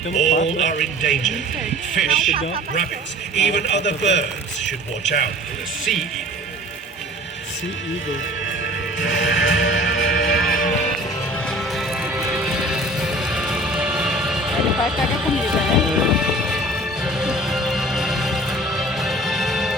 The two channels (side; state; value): both; normal; correlation 0.45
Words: no All pato. are in danger. Fish, rabbits, even other birds should watch out for the sea eagle. Sea Eagle. Ele vai pegar comida, né?